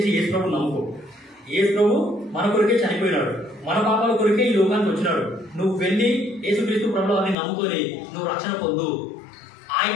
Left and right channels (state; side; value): drops out; right; at 7.4 s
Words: యేసు ప్రభువుని నమ్ముకో. యేసు ప్రభు మన కొరకే చనిపోయినాడు, మన పాపాల కొరకే ఈ లోకానికి వచ్చినాడు. నువ్వు వెళ్ళి యేసుక్రీస్తు ప్రభువు వారిని నమ్ముకొని నువ్వు రక్షణ పొందు,